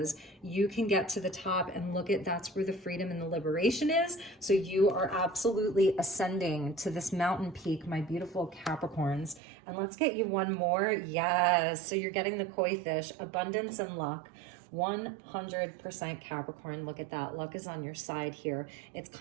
You can get to the top and look at, that's where the freedom and the liberation is. So you are absolutely ascending to this mountain peak, my beautiful Capricorns. And let's get you one more. Yes. So you're getting the koi fish, abundance and luck. 100% Capricorn. Look at that. Luck is on your side here. It's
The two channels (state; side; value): drops out; left; at 9.4 s